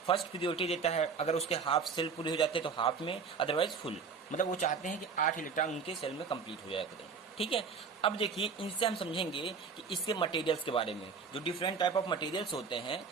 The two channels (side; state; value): left; quieter; 5.5 dB